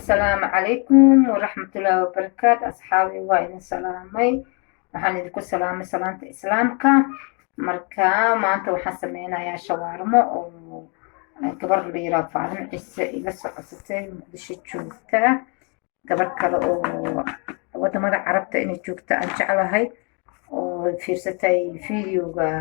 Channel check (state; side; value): quieter; right; 34.8 dB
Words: عليكم ورحمة الله وبركاته أصحابي وإذن سلامي waxaan idinku salaamay salaanta islaamka marka maanta waxaan sameynayaa shawaarmo oo gabar la yiraahdo Faarin Ciise iga socotay Muqdisho joogta gabar kale oo wadamada Carabta inay joogta aan jeclahay oo fiirsatay fiidiyowga